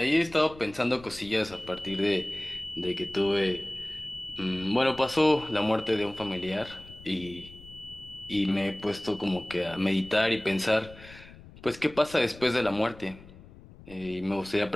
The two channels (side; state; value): left; noise; rumble, 19 dB below the sound